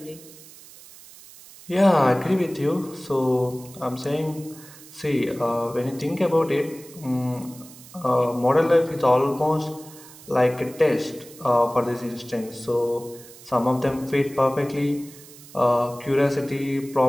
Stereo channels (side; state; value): right; noise; hiss, 20 dB below the sound